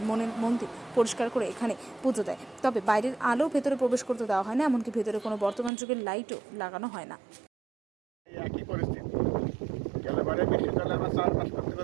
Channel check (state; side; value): drops out; left; at 5.7 s